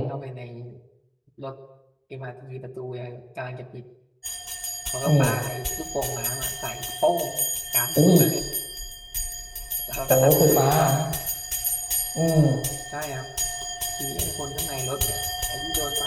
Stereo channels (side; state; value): both; identical; correlation 1.00